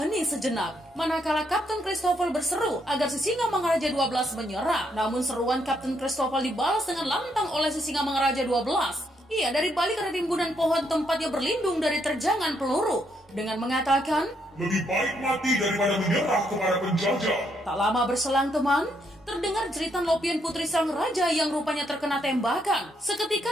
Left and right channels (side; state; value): both; normal; correlation 0.75